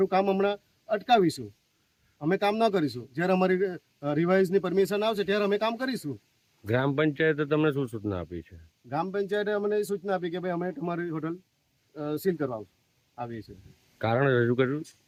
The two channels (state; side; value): identical; both; correlation 1.00